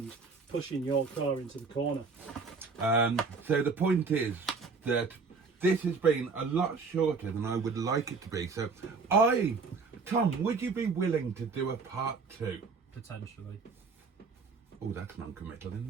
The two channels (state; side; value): quieter; left; 4.6 dB